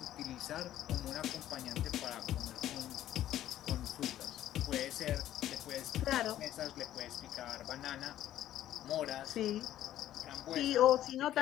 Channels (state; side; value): quieter; right; 12.5 dB